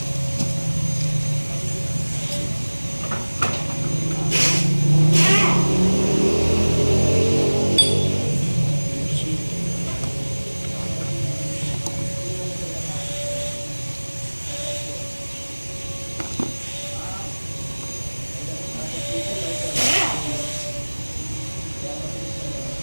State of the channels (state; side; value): inverted; both; correlation -1.00